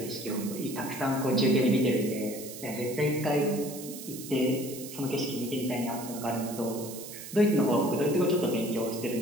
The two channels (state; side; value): noise; right; hiss, 12 dB below the sound